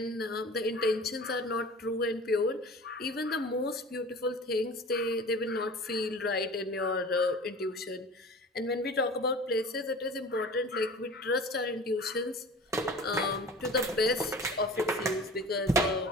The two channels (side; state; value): both; normal; correlation 0.40